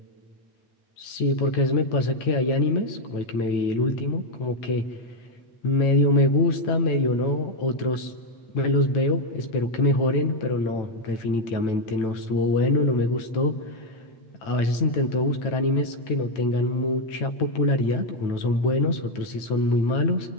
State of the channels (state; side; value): late; right; 9.1 ms